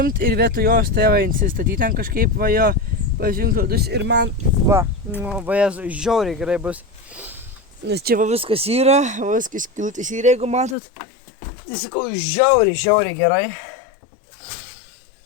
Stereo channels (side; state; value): right; drops out; at 10.8 s